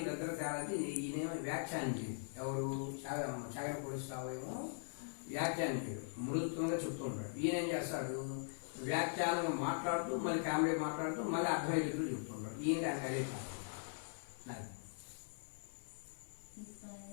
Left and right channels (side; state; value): right; silent; 50 dB below the other